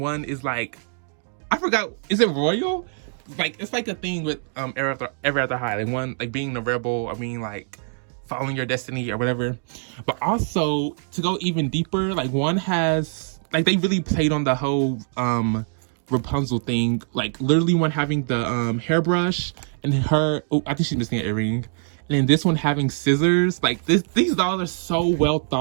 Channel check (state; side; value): silent; left; 63 dB below the other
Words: one is like, I forgot, is it royal? Like it's like a thing with Ever After High, like one like being the rebel or being like following your destiny or whatever. But also to go even deeper, like one has like they really played on the whole Rapunzel thing, like literally one having the hairbrush and her, oh, I think she's missing an earring, and then this one having scissors. Like these dolls are so well